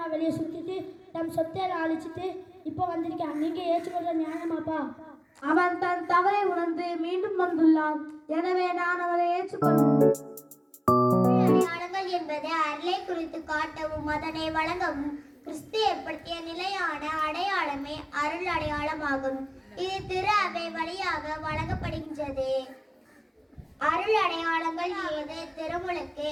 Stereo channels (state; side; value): identical; both; correlation 1.00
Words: வெளியே சுற்றிட்டு தம் சொத்தையில அழிச்சிட்டு இப்போ வந்திருக்கான். நீங்கள் ஏற்றுக்கொள்ள நியாயமாப்பா? அவன் தன் தவறை உணர்ந்து மீண்டும் வந்துள்ளான். எனவே நான் அவனை ஏற்றுக்கொள்வேன். அடையாளங்கள் என்பது அருளை குறித்து காட்டவும் அதனை வழங்கவும் கிறிஸ்து ஏற்படுத்திய நிலையான அடையாளமே அருள் அடையாளமாகும். இது திரு அவை வழியாக வழங்கப்படுகின்றது. அருள் அடையாளங்கள் ஏது? திருமுழுக்கு,